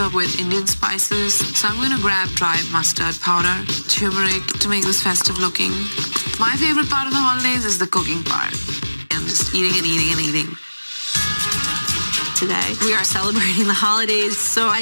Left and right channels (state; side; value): inverted; both; correlation -1.00